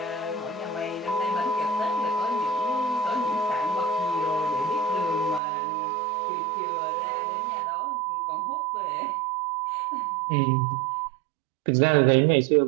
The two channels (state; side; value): drops out; left; at 5.4 s